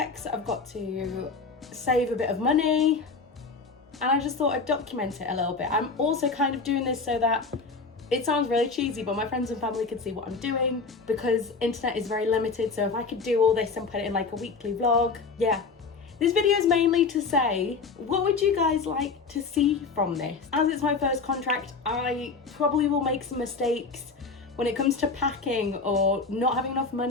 I've got to save a bit of money, and I just thought I'd document it a little bit. I'm also kind of doing this so that it sounds really cheesy, but my friends and family could see what I'm doing, because internet is very limited. So if I could do all this and put it in like a weekly vlog, yeah. This video is mainly to say, what would you guys like to see from this? As it's my first contract, I probably will make some mistakes when it comes to packing or not having enough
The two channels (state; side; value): quieter; right; 4.4 dB